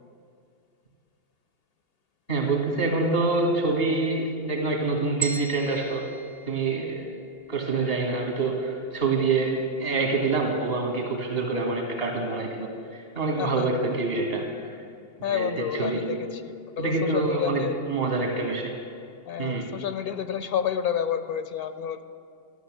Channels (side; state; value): right; late; 2.8 ms